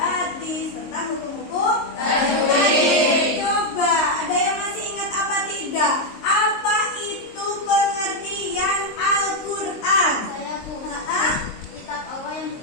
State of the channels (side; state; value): right; late; 23 ms